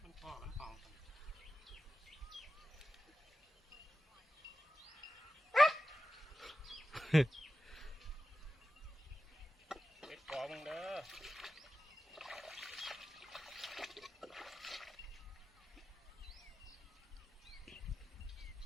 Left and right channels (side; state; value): both; normal; correlation 0.93